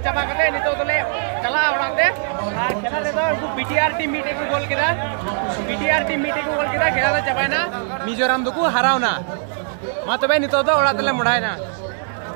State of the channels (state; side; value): silent; left; 65 dB below the other